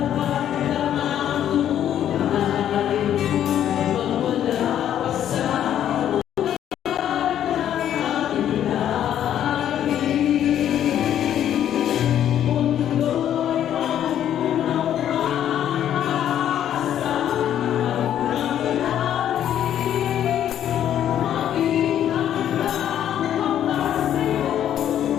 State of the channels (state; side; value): quieter; right; 10.5 dB